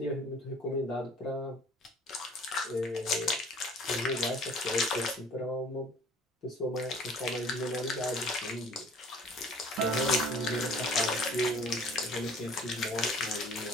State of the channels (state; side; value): normal; both; correlation 0.51